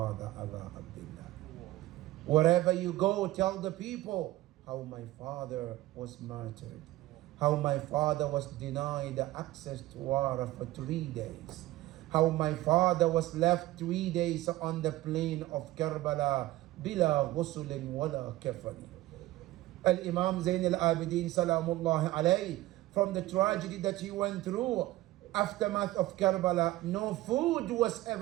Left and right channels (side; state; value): left; quieter; 16.9 dB